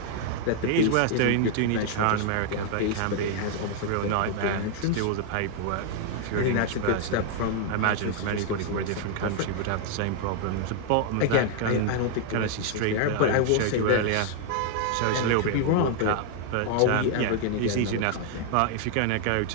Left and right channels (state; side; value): different; both; correlation 0.00